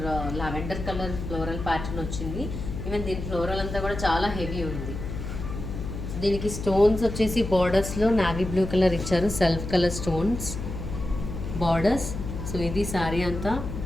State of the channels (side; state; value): left; noise; hum, 6 dB below the sound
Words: lavender colour floral pattern వచ్చింది. ఈవెన్ దీని ఫ్లోరల్ అంతా కూడా చాలా హెవీ ఉంది. దీనికి స్టోన్స్ వచ్చేసి బార్డర్స్లో నావీ బ్లూ కలర్ ఇచ్చారు, self colour stones borders. So ఇది శారీ అంతా